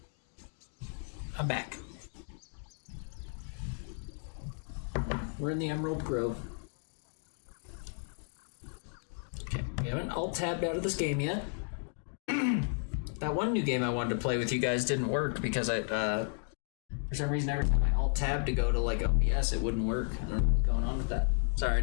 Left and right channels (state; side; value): silent; right; 55 dB below the other